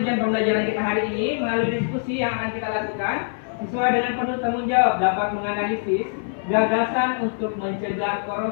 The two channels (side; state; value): right; silent; digital silence